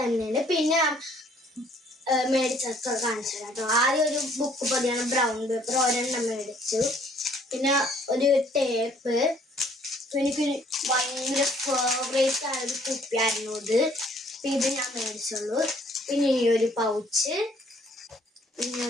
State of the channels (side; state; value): both; normal; correlation 0.61